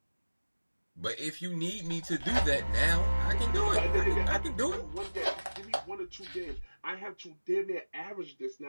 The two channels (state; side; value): inverted; both; correlation -1.00